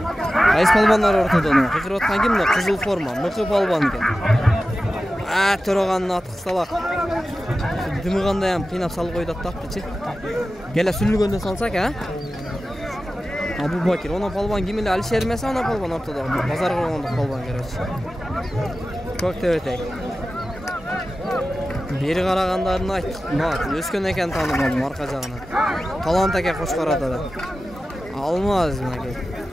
Айс палбандар ортодон. Кыйкырып аткан ким мына кызыл форма, мыкы палбан экен. Төраганын аты кысталак. Дымыгандай ham кыйнап салып койду аттапчы. Келе сүрүлгөндө салсак, Абубакир, она палбан ким эле Алишер эмес, она палбан ортодо. Базар кылгондук палбан керечи. Көктөбөтөй. Бери карагандарын айт. Өскөн экен таанымадым арка жагынан. Талант эке Кошкарада да. Алмаз мына.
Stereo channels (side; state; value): both; normal; correlation 0.94